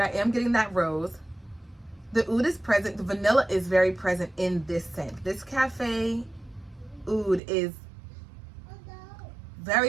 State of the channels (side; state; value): left; drops out; at 7.4 s